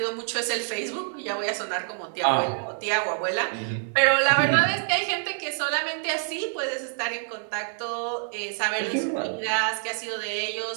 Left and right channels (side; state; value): left; silent; digital silence